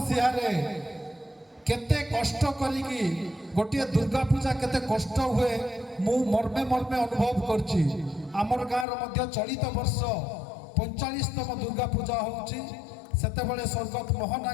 केते कष्ट करी गोटे दुर्गा पूजा केते कष्ट हुए मु मर्मे मर्मे अनुभव करछि। आमर गाँव मध्य चलित वर्ष 45तम दुर्गा पूजा होउछि। सेते बेले स्वर्गत मोहन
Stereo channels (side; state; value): right; drops out; at 8.8 s